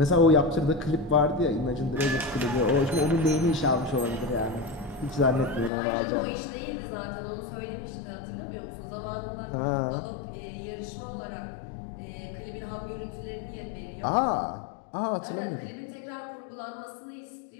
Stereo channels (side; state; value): right; drops out; at 5.7 s